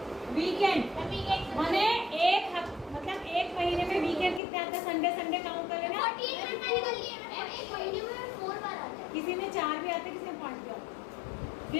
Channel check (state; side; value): drops out; right; at 4.4 s